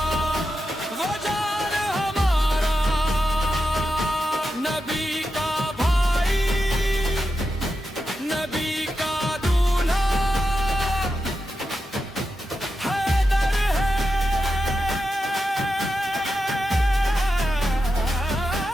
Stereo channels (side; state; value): both; normal; correlation 0.89